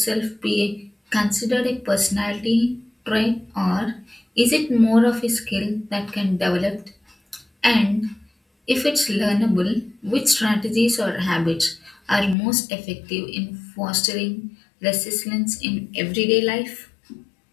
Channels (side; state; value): right; drops out; at 12.4 s